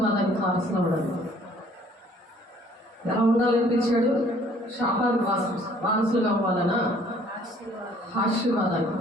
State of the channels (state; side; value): normal; both; correlation 0.58